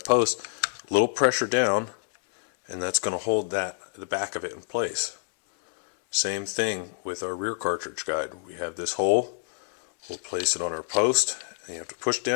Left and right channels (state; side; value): silent; right; 60 dB below the other